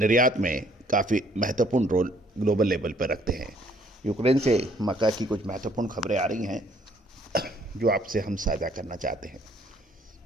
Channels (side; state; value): both; normal; correlation 0.63